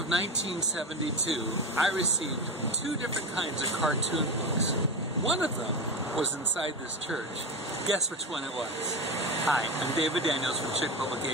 1972, I received 2 different kinds of cartoon books. One of them was inside this church. Guess which one it was? Hi, I'm David Daniels from Chick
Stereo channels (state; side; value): normal; both; correlation 0.20